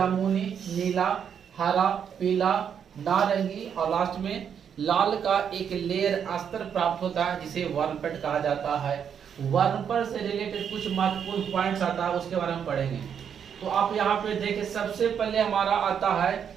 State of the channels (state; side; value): quieter; left; 7.9 dB